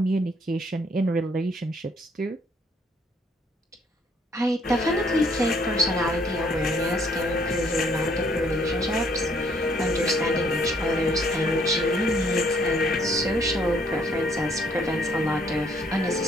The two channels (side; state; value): both; normal; correlation 0.65